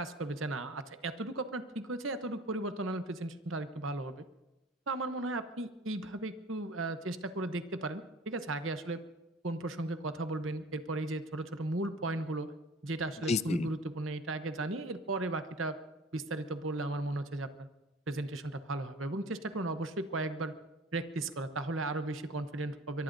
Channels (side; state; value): both; normal; correlation 0.45